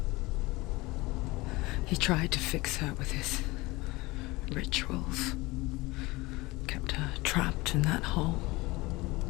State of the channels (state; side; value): quieter; right; 21.9 dB